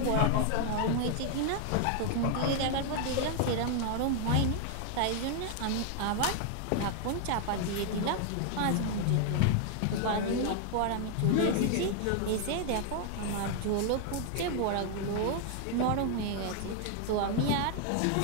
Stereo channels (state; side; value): different; both; correlation 0.00